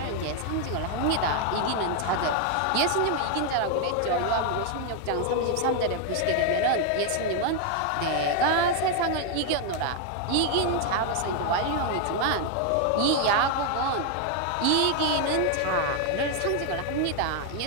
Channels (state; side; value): different; both; correlation 0.01